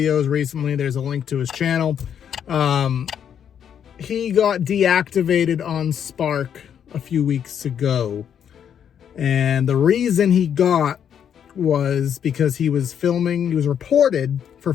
recently. There's a link to his channel. He got deactivated on Spark a few weeks ago. And the reason he got was because he was reported for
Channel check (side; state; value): right; quieter; 8.6 dB